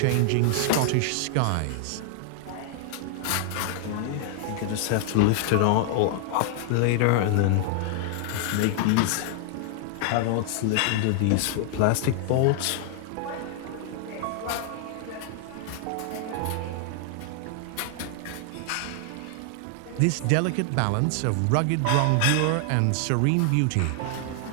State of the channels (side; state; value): both; different; correlation 0.00